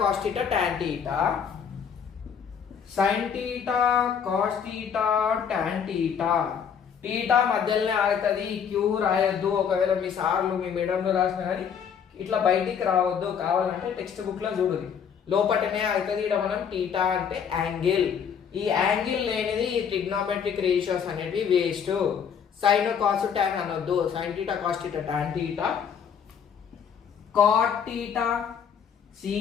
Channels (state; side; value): quieter; right; 7.4 dB